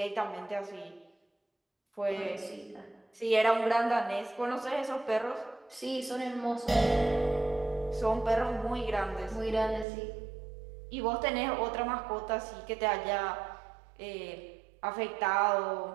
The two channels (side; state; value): left; drops out; at 9.9 s